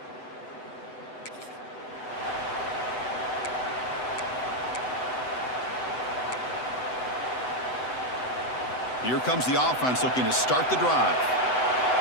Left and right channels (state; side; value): late; right; 7.9 ms